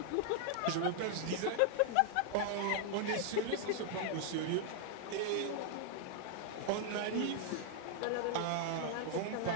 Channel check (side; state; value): both; different; correlation 0.00